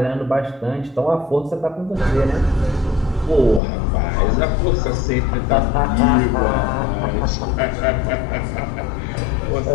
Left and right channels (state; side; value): drops out; right; at 3.6 s